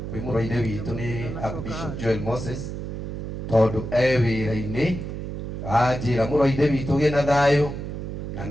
kwĩ mũrũ-ithe witũ nĩ Archbishop Joel Moses tondũ wĩra-inĩ anjĩra mũrũ-ithe witũ gĩ na thayũ na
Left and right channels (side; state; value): right; noise; hum, 6 dB below the sound